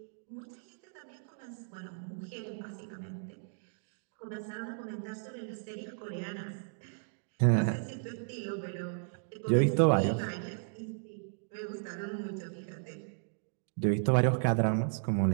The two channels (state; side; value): silent; left; digital silence